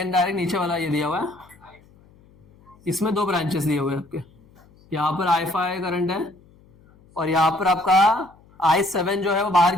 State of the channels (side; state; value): left; noise; hum, 28 dB below the sound